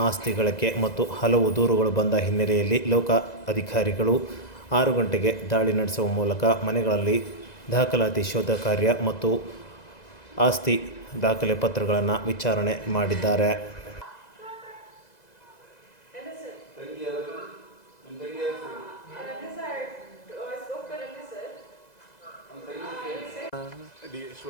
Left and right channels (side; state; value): right; late; 2.0 ms